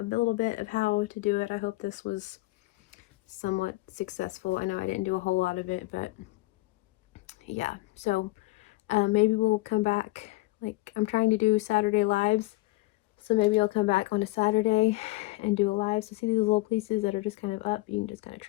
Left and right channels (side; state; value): right; quieter; 20.7 dB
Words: little bit of how to do it. I hope this was somewhat successful. I know I didn't do a whole lot of it, but yeah. So maybe we'll come back. Like, I'm trying to do Saturday lives, so maybe I'll come back on a Saturday and do a live. So see these little pieces that are just kind of up, you can just kind of